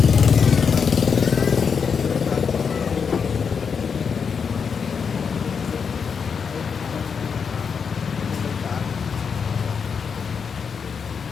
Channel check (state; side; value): quieter; right; 6.2 dB